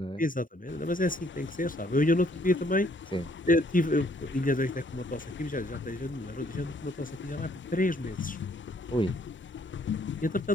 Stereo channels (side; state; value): both; normal; correlation 0.65